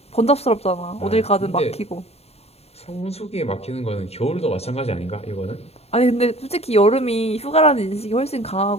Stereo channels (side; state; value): right; late; 0.30 ms